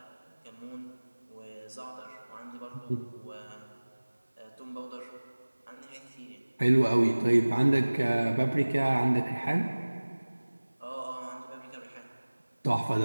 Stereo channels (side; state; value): both; inverted; correlation -1.00